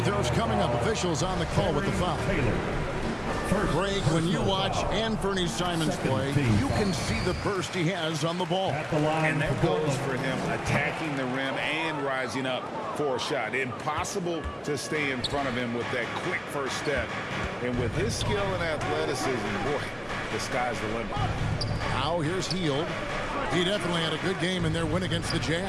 throws coming up. Officials on the call with the foul. Greg, when you watch Anthony Simons play, you can see the burst he has on the ball. And that goes for him attacking the rim and rising up for a shot. Impossible to stay in front of him with that quick first step. And with his skill and athleticism, boy, the sky's the limit. Now here's Hield. He definitely had a good game in their win against the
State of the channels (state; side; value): identical; both; correlation 1.00